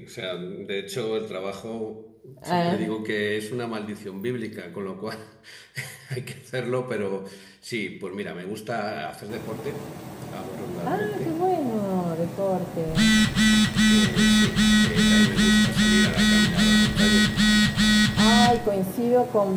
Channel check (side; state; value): both; identical; correlation 1.00